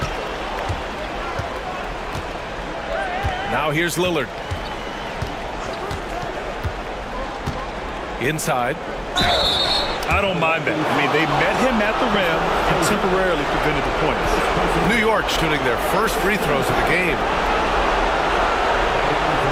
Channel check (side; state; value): both; identical; correlation 1.00